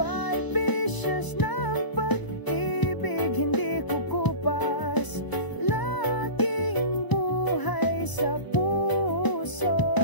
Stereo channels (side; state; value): right; late; 1.0 ms